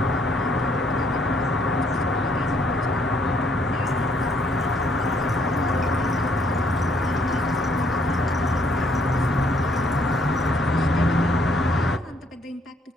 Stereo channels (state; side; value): normal; both; correlation 0.67